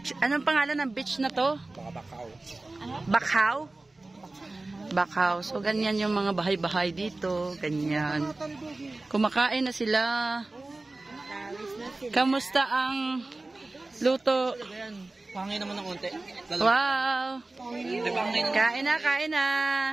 Anong pangalan ng beach na to? Bakaw. Bakaw? Bakaw. So ganyan yung mga bahay-bahay dito. Ganyan. Kumakain na sila. Kamusta ang luto? Pangay naman ng konti. Wow! Kain na, kain na.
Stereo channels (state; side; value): quieter; left; 3.1 dB